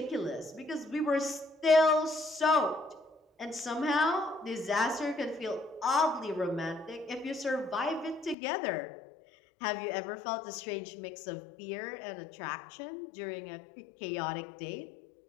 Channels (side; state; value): right; drops out; at 8.3 s